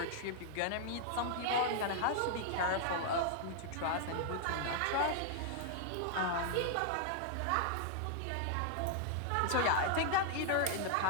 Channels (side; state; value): both; different; correlation -0.01